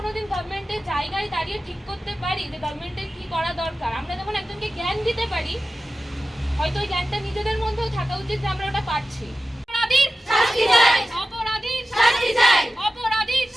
গভর্নমেন্টের জায়গায় দাঁড়িয়ে ঠিক করতে পারি যে গভর্নমেন্টের কি করা দরকার, আমরা যখন একজনকে জ্ঞান দিতে পারি, হয়তো ওই জ্ঞানটা নিজেদের মধ্যেও থাকা উচিত যে আমরা ওটা পারছি। অপরাধীর শাস্তি চাই, অপরাধীর শাস্তি চাই, অপরাধীর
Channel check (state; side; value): normal; both; correlation 0.94